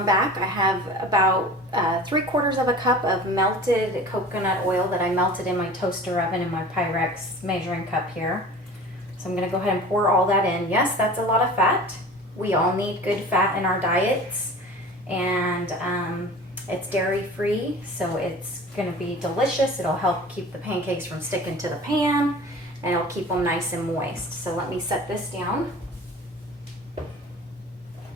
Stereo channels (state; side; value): normal; both; correlation 0.40